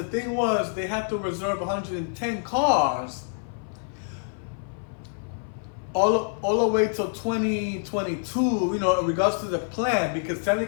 thing was they had to reserve 110 cars all the way till 2022, you know, in regards to the plan, because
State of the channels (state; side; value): silent; right; 56 dB below the other